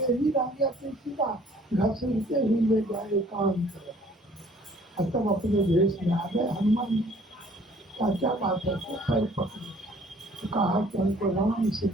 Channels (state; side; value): normal; both; correlation 0.57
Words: ही रह गया। तुलसीदास घसीटते ही ले जाए एकांत और तब अपने भेष में आ गए। हनुमान क्या बात है, तो पैर पकड़े तो कहा कि हमको राम से